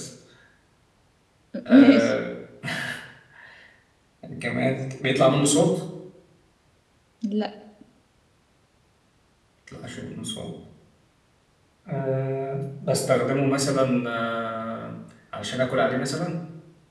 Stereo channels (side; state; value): both; identical; correlation 1.00